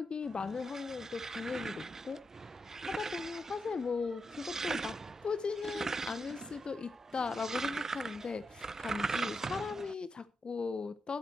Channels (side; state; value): both; normal; correlation 0.85